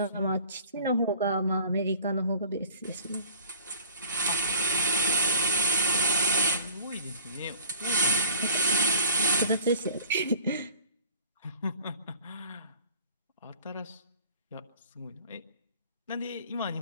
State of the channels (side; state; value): both; inverted; correlation -0.49